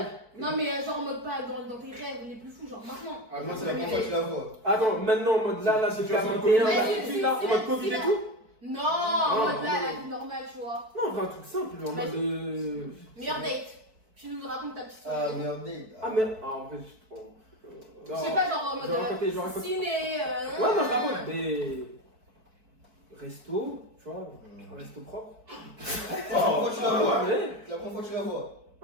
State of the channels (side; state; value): left; late; 4.5 ms